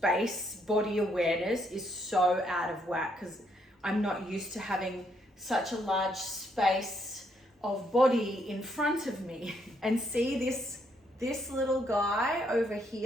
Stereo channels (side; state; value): both; normal; correlation 0.73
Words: body awareness is so out of whack because I'm not used to having such a large space of body in front of me. And see this little guy over